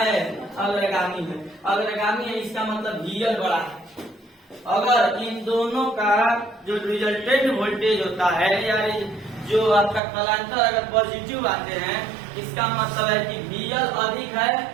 अग्रगामी है। अग्रगामी है इसका मतलब VL बड़ा है। अगर इन दोनों का जो रिजल्टेंट वोल्टेज होता है या जो आपका कलांतर अगर पॉजिटिव आते हैं इसका मतलब है कि VL अधिक है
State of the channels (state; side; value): drops out; left; at 10.0 s